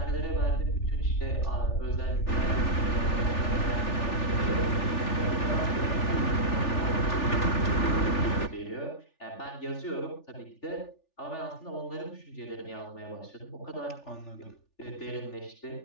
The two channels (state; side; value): late; right; 3.4 ms